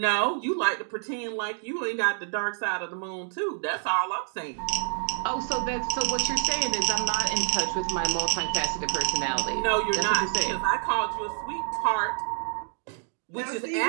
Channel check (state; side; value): silent; left; 60 dB below the other